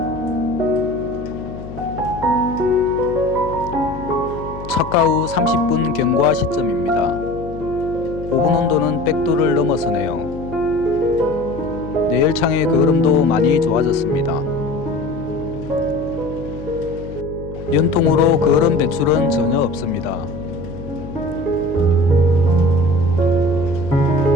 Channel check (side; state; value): left; noise; hum, 12 dB below the sound